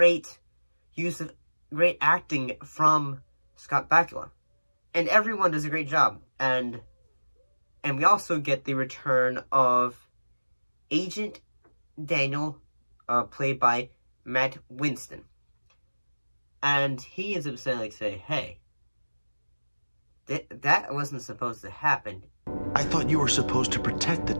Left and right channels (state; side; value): inverted; both; correlation -1.00